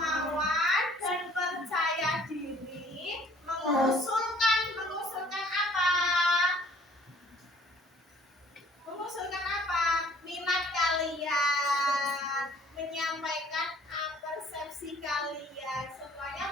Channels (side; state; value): both; normal; correlation 0.56